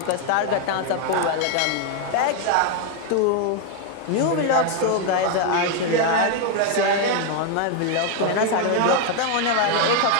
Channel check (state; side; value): different; both; correlation 0.01